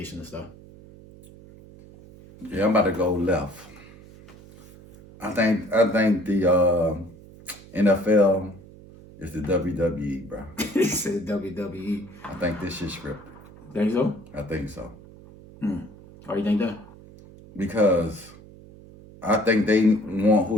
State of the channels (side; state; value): right; noise; hum, 20 dB below the sound